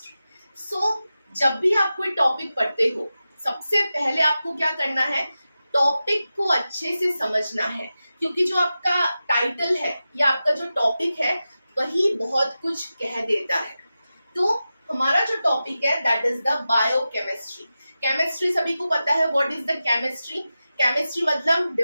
जब भी आप कोई टॉपिक पढ़ते हो, सबसे पहले आपको क्या करना है, टॉपिक को अच्छे से समझना है, क्योंकि जो आपका टाइटल है या आपका जो टॉपिक है वही बहुत कुछ कह देता है। तो हमारा जो टॉपिक है that is the biochemistry. Chemistry सभी को पता है, what is the chemistry. Chemistry मतलब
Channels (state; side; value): inverted; both; correlation -0.93